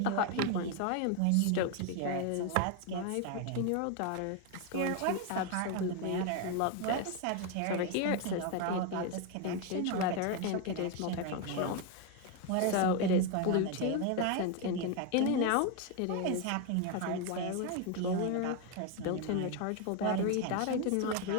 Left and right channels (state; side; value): different; both; correlation 0.01